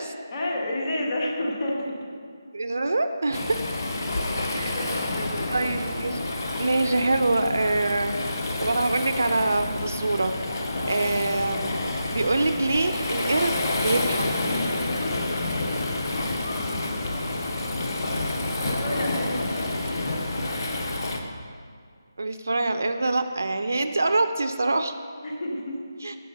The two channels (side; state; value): both; inverted; correlation -0.87